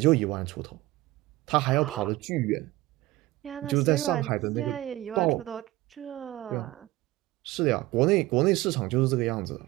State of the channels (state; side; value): quieter; left; 18.0 dB